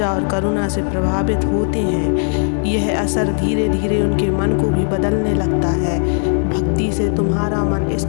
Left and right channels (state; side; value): silent; right; 64 dB below the other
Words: और करुणा से प्रभावित होते हैं। यह असर धीरे धीरे उनके मन को भी बदलने लगता है। भक्ति से तुम्हारा मन